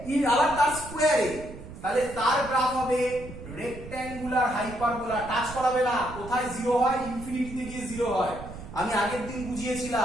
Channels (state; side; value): noise; right; rumble, 13 dB below the sound